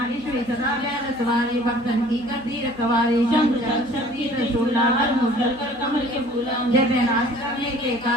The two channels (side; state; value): right; noise; hum, 23 dB below the sound